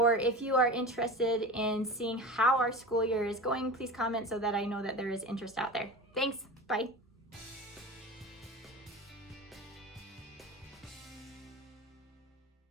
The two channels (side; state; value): both; normal; correlation 0.31